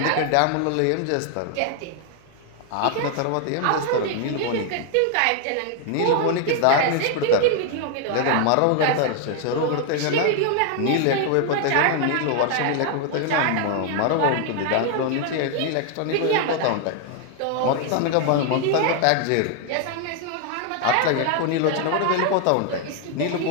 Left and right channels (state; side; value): different; both; correlation 0.00